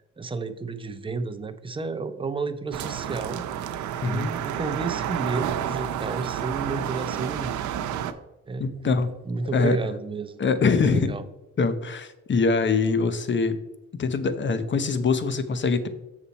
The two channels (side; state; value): both; normal; correlation 0.44